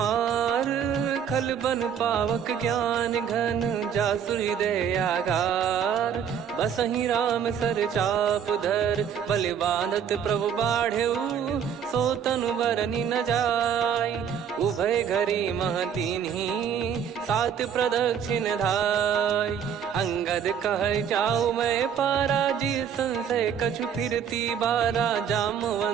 खल बन पावक ज्ञान घन जासु हृदय आगार बसहि राम सर चाप धर बलि बांधत प्रभु बाढ़ेऊ सो तनु बरनि न जाय उभय घरी महतीन्ही सात प्रदक्षिण धाय अंगद कह जाऊ मैं पारा जी संशय कछु फिरती बारा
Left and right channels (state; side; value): quieter; left; 8.0 dB